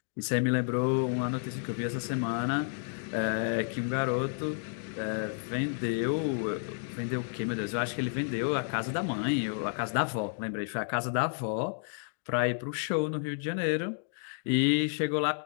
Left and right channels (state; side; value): silent; right; digital silence